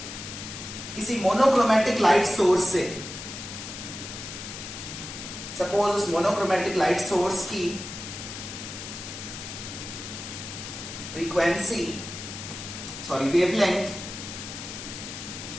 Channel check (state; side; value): noise; left; hiss, 9 dB below the sound